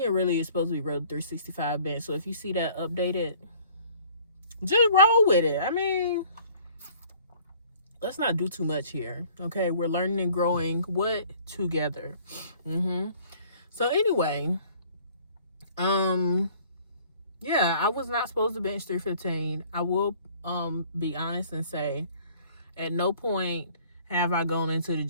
it really is supposed to be road 365 bench. So if you see that updated, just roll with it. I mean, let's not do too much here. Okay, we're learning and growing together. So anyway, yeah, I was not supposed to bench 315. I will be honest and say at no point have I gone into the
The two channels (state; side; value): inverted; both; correlation -0.55